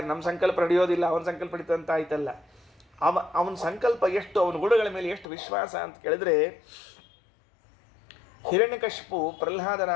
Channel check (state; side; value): drops out; right; at 5.2 s